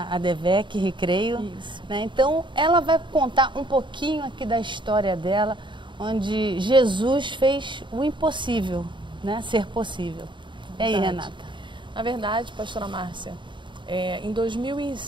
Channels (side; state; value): left; late; 0.23 ms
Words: ADVEC Recreio, né? Então ela vai contar um pouquinho aqui da história dela, onde Jesus fez o impossível, né, ser possível. E aí, Renata? Na verdade, pastora Márcia, em